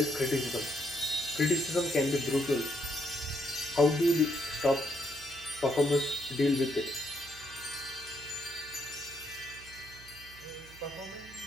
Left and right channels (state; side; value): noise; right; hum, 20 dB below the sound